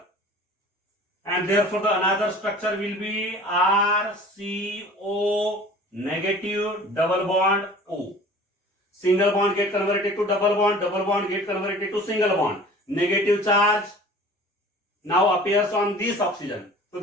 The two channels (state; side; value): normal; both; correlation 0.45